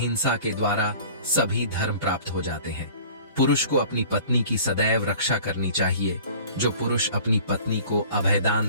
के द्वारा सभी धर्म प्राप्त हो जाते हैं। पुरुष को अपनी पत्नी की सदैव रक्षा करनी चाहिए। जो पुरुष अपनी पत्नी को अभयदान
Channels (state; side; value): inverted; both; correlation -0.45